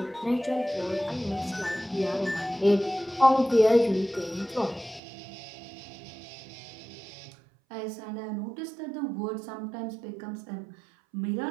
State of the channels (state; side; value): drops out; left; at 5.0 s